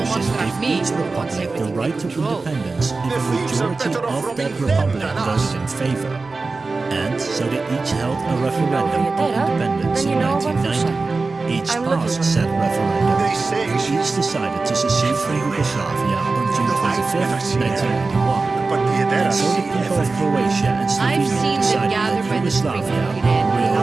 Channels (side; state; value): left; quieter; 3.8 dB